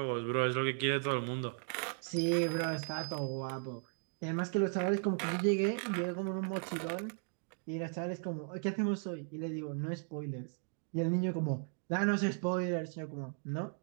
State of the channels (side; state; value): left; silent; 54 dB below the other